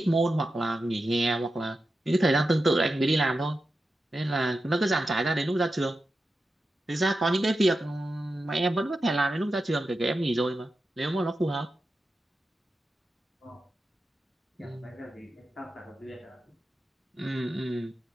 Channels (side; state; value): both; normal; correlation 0.91